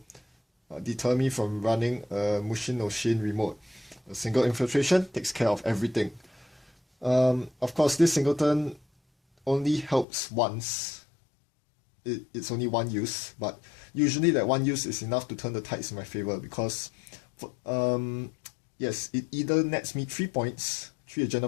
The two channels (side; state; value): right; drops out; at 10.1 s